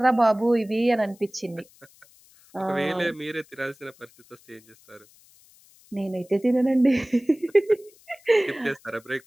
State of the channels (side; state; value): left; noise; hiss, 28 dB below the sound